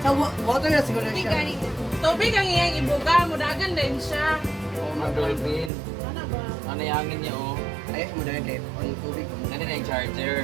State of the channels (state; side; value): drops out; left; at 5.7 s